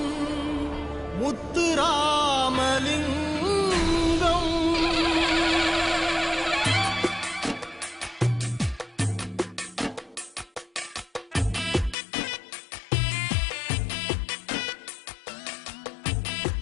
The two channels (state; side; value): drops out; right; at 12.0 s